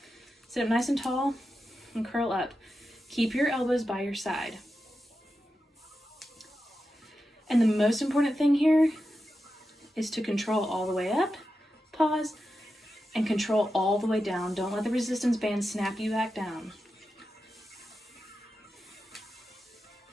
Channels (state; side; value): normal; both; correlation 0.90